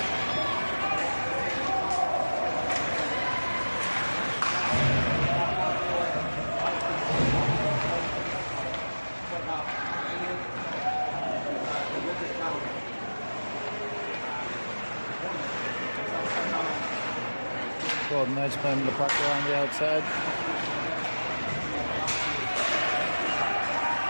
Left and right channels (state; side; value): inverted; both; correlation -1.00